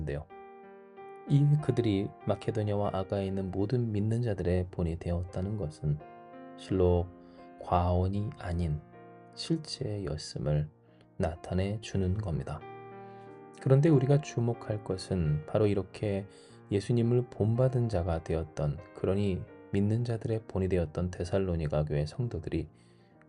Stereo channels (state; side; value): identical; both; correlation 1.00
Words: 이 그들이 마케도냐와 아가에 있는 모든 믿는 자들의 본이 되었다는 것은 실로 과언이 아닌 실제였음을 나타내 주는 겁니다. 그런데 우리가 주목할 것은 바로 이렇게 예수님을 본받은 자가 되었던, 그러니 믿는 자들의 본이 되었던 데살로니가 교회 성도들이